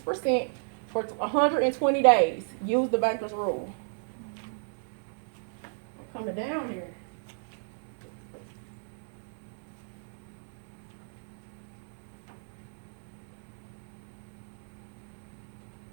for 120 days. Use the banker's rule. I'm coming down here.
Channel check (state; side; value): silent; left; 56 dB below the other